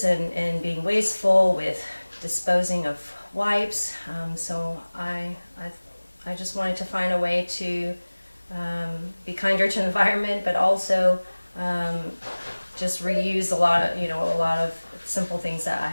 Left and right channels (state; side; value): inverted; both; correlation -1.00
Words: and being wasteful with disposing of wipes. So I just wanted to find a way to be kinder to the environment, but also just reuse a lot of simple things that I